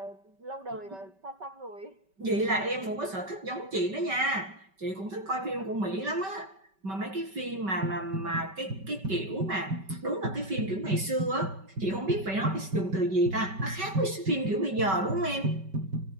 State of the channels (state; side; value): late; left; 5.2 ms